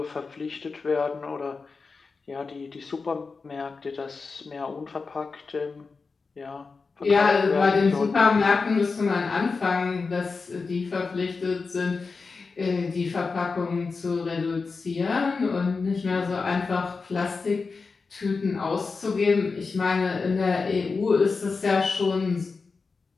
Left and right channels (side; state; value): right; quieter; 4.5 dB